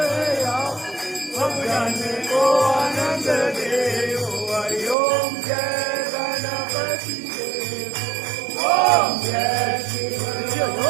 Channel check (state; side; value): drops out; left; at 5.0 s